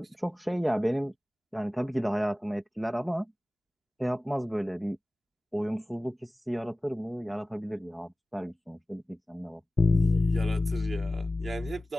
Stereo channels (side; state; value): both; normal; correlation 0.96